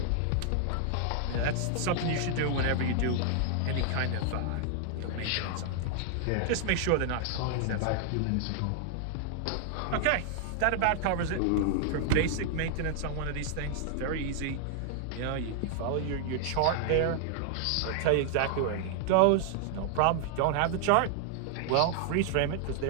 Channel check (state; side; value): different; both; correlation 0.00